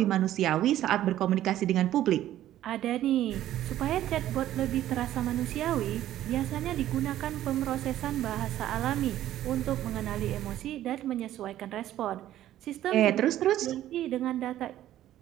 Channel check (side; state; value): left; quieter; 12.9 dB